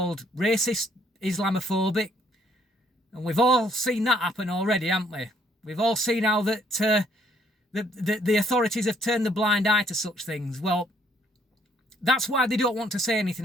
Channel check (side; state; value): both; normal; correlation 0.66